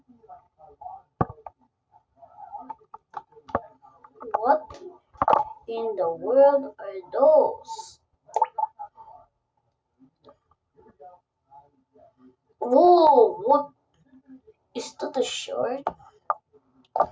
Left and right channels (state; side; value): identical; both; correlation 1.00